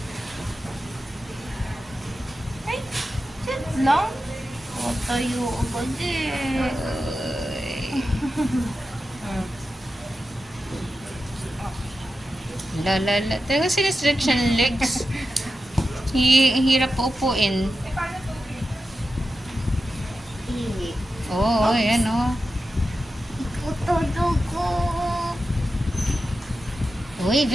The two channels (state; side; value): normal; both; correlation 0.91